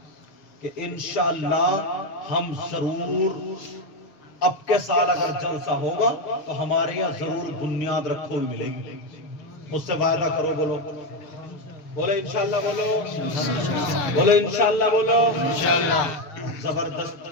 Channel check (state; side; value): late; right; 6.8 ms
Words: کہ انشاءاللہ ہم ضرور اب کے سال اگر جلسہ ہوگا تو ہمارے یہاں ضرور بنیاد رکھو ہوئی ملے گی. مجھ سے وعدہ کرو. بولو بولے انشاءاللہ, بولو بولے انشاءاللہ, بولو انشاءاللہ.